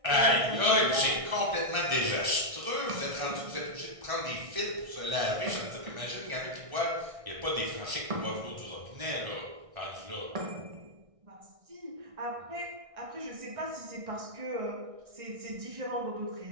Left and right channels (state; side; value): late; left; 1.6 ms